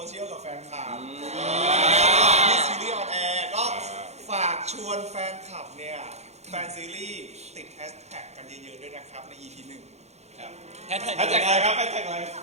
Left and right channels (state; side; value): late; left; 0.32 ms